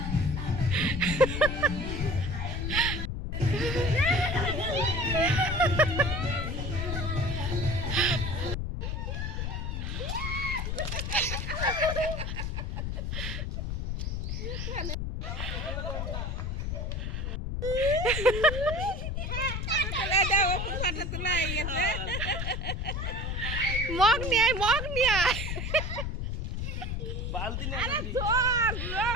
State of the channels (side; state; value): left; noise; rumble, 2 dB below the sound